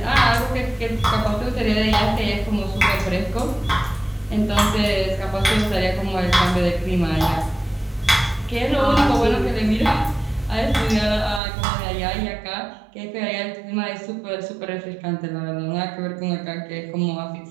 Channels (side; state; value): left; drops out; at 11.4 s